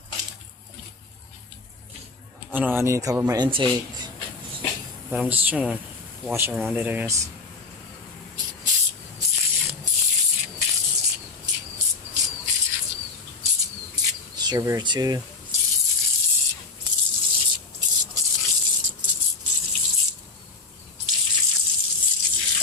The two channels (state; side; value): quieter; right; 4.0 dB